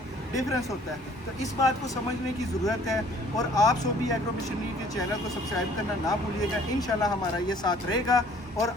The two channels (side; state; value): both; normal; correlation 0.56